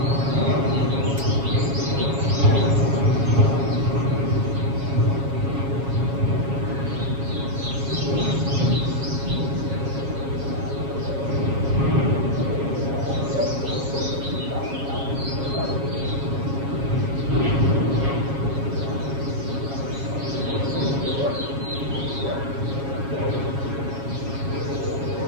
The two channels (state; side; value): late; left; 7.3 ms